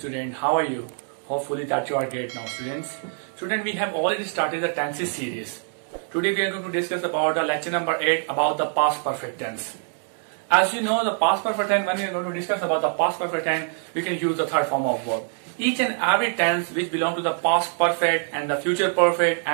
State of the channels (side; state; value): left; silent; 56 dB below the other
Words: how are you? Hopefully that you are great now students. Student, we have already started the tenses series. Today we are going to discuss about the lecture number 8 about the past perfect tense. As you know, the past perfect tense, when we are going to discuss about the past perfect tense, we can use the third form of verb. Each and every tense which belong to the past perfect and the future perfect